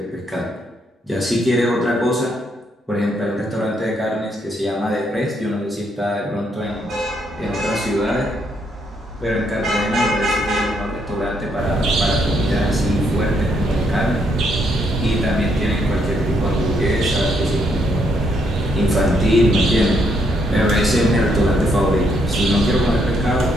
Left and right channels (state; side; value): normal; both; correlation 0.74